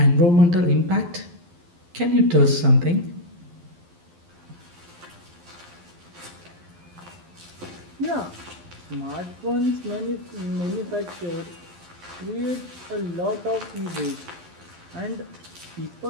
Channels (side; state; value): left; late; 11 ms